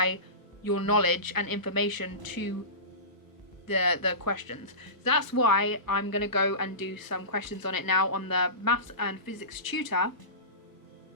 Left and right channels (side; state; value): right; late; 1.0 ms